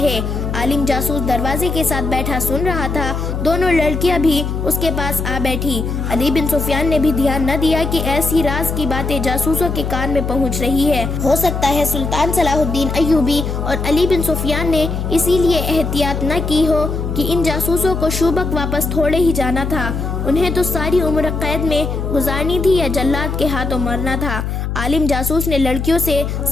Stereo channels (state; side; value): noise; left; hum, 3 dB below the sound